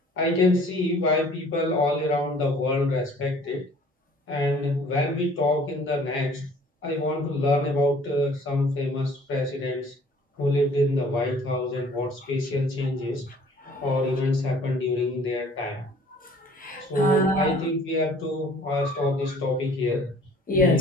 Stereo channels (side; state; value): both; normal; correlation 0.54